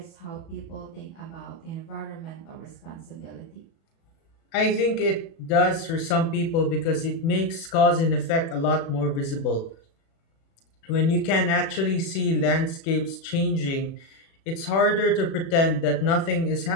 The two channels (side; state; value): right; late; 36 ms